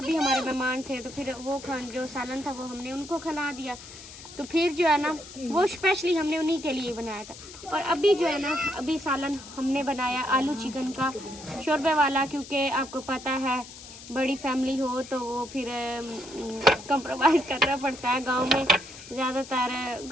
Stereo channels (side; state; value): left; noise; hiss, 16 dB below the sound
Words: भी हमारे मेहमान थे, तो फिर वो जो सालन था वो हमने उनको खिला दिया। तो फिर जो है ना वो स्पेशली हमने उन्हीं के लिए बनाया था। और अभी जो है ना अभी सालन हमने बनाया आलू चिकन का शोरबे वाला, क्योंकि आपको पता है बड़ी फैमिली हो तो वो फिर कंप्रोमाइज़ करना पड़ता है। गांव में ज़्यादातर,